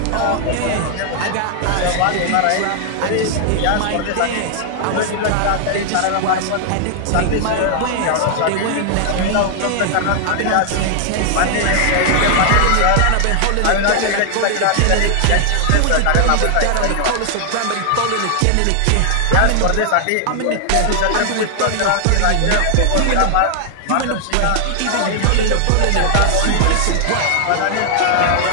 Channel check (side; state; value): both; different; correlation 0.00